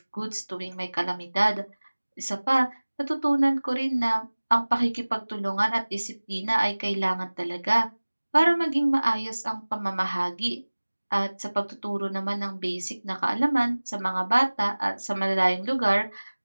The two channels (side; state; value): both; inverted; correlation -1.00